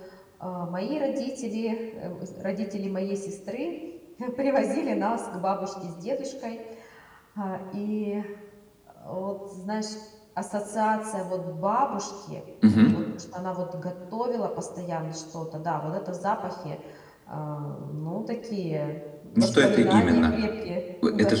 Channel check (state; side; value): identical; both; correlation 1.00